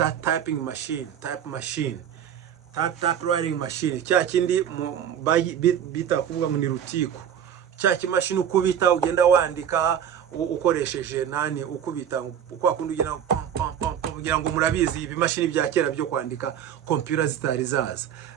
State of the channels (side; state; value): left; quieter; 9.2 dB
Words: type writing machine, cya kindi bita kuvuga ngo ni rutiko, cya kimashini ukubita ugenda wandika ukoresheje nani, ukubita uko akundi ugenda kugira ngo murabizi ibimashini bya kera byo kwandika computer zitari zaza.